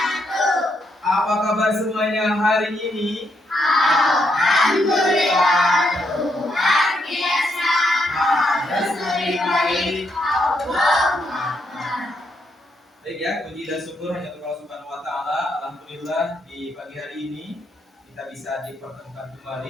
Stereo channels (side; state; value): both; normal; correlation 0.77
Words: Apa kabar semuanya hari ini? Alhamdulillah, luar biasa. Lebih baik. Allahumma akbar. Baik ya, puji dan syukur hanya untuk Allah Subhanahu wa taala. Alhamdulillah di pagi hari ini kita bisa dipertemukan